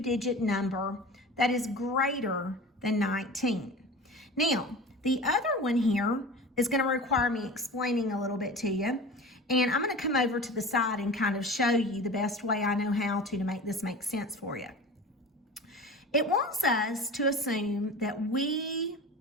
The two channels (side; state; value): both; normal; correlation 0.35